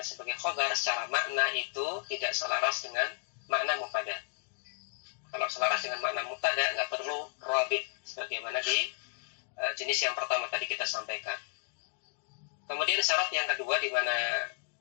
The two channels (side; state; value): right; silent; digital silence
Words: sebagai khobar secara makna itu tidak selaras dengan makna mubtada. Kalau selaras dengan makna mubtada nggak perlu robit, sebagaimana di jenis yang pertama tadi kita sampaikan. Kemudian syarat yang kedua di mana